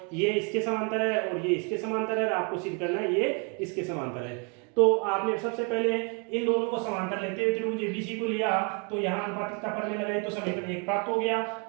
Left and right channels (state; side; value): quieter; left; 35.2 dB